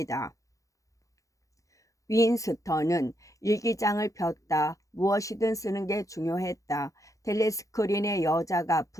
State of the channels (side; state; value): right; late; 0.16 ms